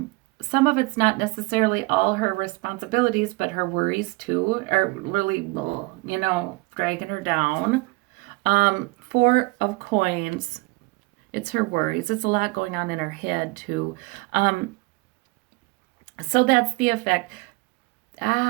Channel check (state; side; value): quieter; left; 24.7 dB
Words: Some of it's not necessarily all her responsibilities, but her worries too are really, dragging her down. Four of Coins. It's her worries. It's a lot going on in her head too. So that's the effect.